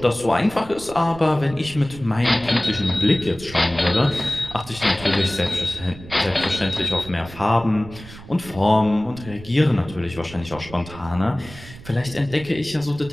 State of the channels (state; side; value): noise; right; rumble, 16 dB below the sound